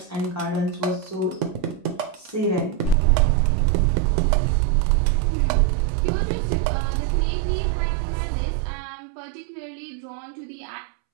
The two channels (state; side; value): drops out; left; at 3.0 s